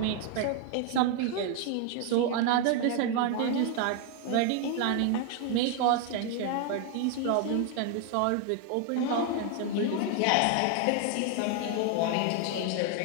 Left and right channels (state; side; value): different; both; correlation 0.01